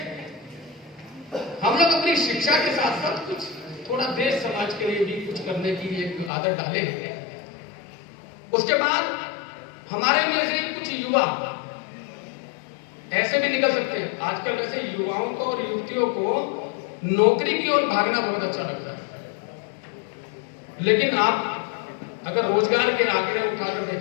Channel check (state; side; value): drops out; right; at 6.3 s